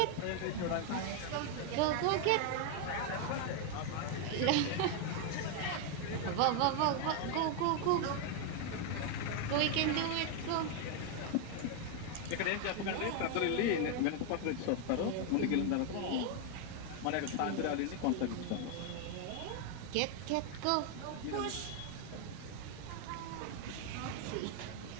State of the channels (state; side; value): different; both; correlation 0.00